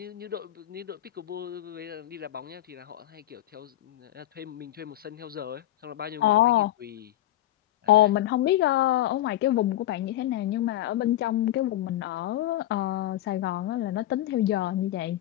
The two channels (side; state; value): right; quieter; 13.8 dB